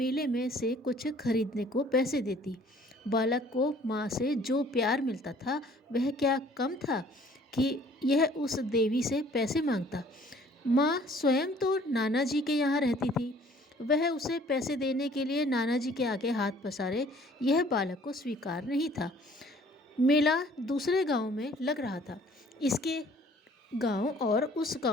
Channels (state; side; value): normal; both; correlation 0.55